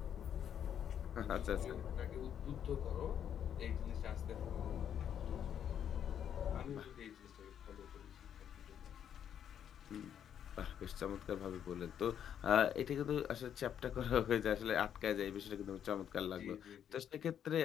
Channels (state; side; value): quieter; right; 9.1 dB